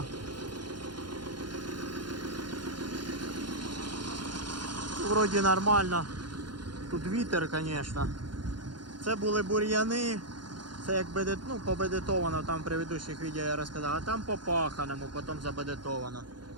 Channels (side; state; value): left; late; 0.71 ms